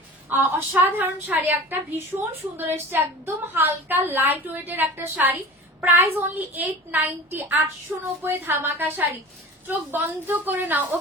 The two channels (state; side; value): normal; both; correlation 0.37